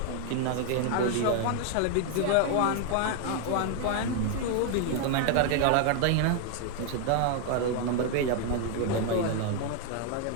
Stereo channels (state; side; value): different; both; correlation 0.00